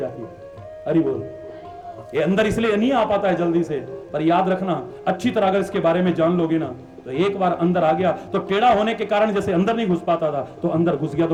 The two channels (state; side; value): identical; both; correlation 1.00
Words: है। अरे बोल, ये अंदर इसलिए नहीं आ पाता है जल्दी से, पर याद रखना, अच्छी तरह अगर इसके बारे में जान लोगे ना, तो एक बार अंदर आ गया तो टेढ़ा होने के कारण जैसे अंदर नहीं घुस पाता था, तो अंदर घुस गया तो